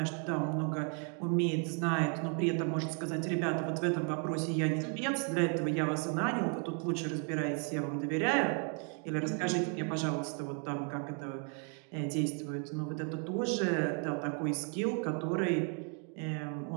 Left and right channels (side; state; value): left; quieter; 39.9 dB